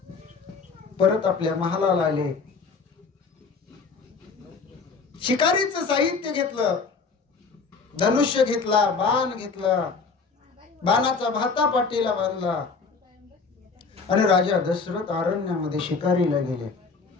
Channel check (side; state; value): right; quieter; 4.8 dB